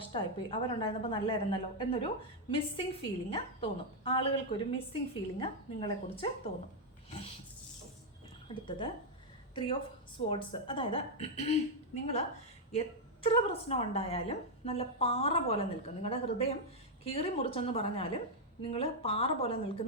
അവരുണ്ടായിരുന്നപ്പോൾ നല്ലതായിരുന്നല്ലോ എന്നൊരു മിസ്സിങ് ഫീലിംഗ് തോന്നും. ആളുകൾക്കൊരു മിസ്സിങ് ഫീലിംഗ് നിങ്ങളെക്കുറിച്ച് തോന്നും. അടുത്തത് 3 ഓഫ് സ്വോർഡ്സ്. അതായത് നിങ്ങൾ എത്ര പ്രശ്നം ഉണ്ടായാലും നല്ല പാറ പോലെ നിൽക്കും. നിങ്ങളുടെ ഹൃദയം കീറി മുറിച്ചെന്ന് പറഞ്ഞാലും നിങ്ങൾ പാറ പോലെ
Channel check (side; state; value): both; normal; correlation -0.01